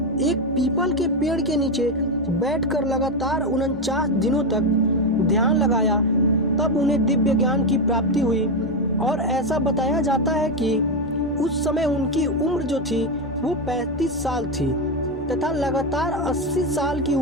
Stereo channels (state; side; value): normal; both; correlation 0.09